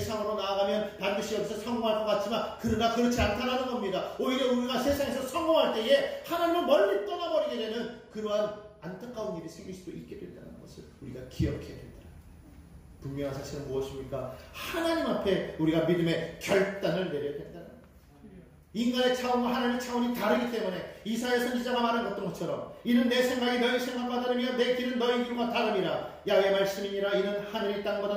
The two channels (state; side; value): identical; both; correlation 1.00